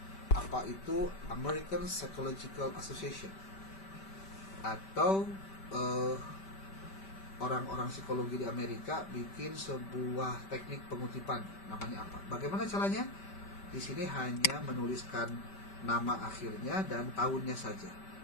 Apa itu? American Psychological Association, atau orang-orang psikologi di Amerika bikin sebuah teknik pengutipan, namanya apa? Bagaimana caranya? Di sini hanya menuliskan nama akhirnya dan tahunnya saja.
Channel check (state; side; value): late; right; 5.1 ms